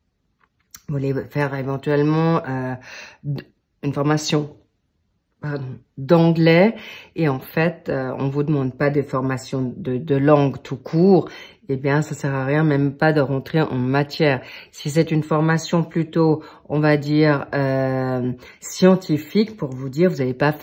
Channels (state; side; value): identical; both; correlation 1.00